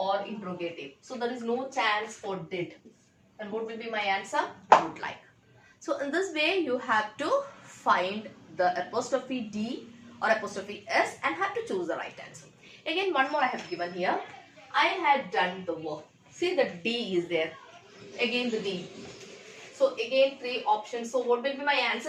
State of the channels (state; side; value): identical; both; correlation 1.00